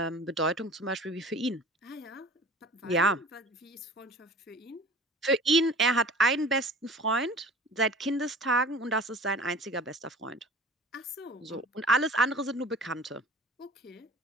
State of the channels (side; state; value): both; normal; correlation 0.43